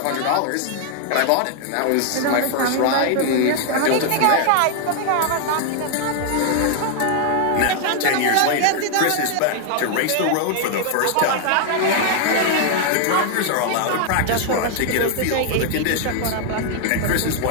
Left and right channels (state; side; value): different; both; correlation 0.00